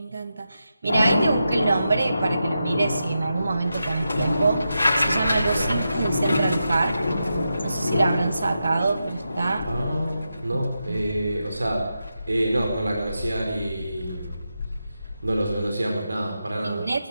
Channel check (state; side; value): inverted; both; correlation -0.88